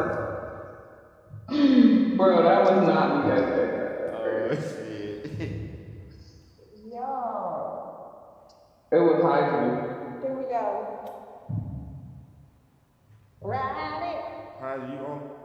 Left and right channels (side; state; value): both; identical; correlation 1.00